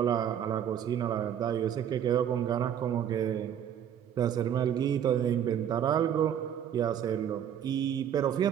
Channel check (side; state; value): left; quieter; 9.4 dB